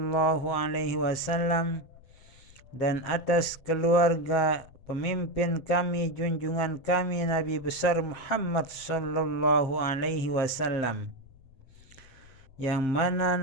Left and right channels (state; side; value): late; right; 7.5 ms